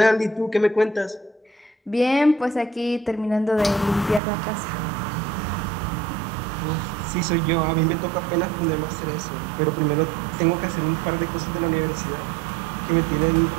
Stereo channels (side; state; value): left; drops out; at 4.2 s